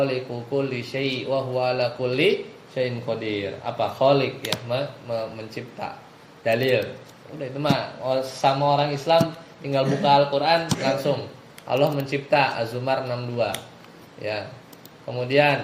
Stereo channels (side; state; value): both; identical; correlation 1.00